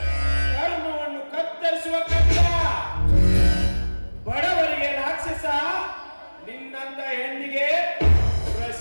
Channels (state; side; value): inverted; both; correlation -1.00